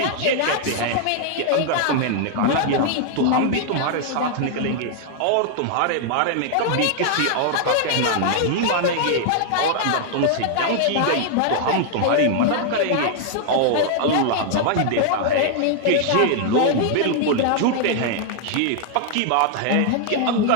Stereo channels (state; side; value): different; both; correlation 0.00